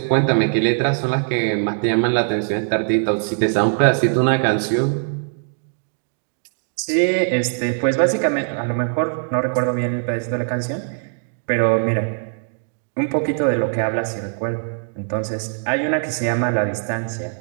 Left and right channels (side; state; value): left; silent; 65 dB below the other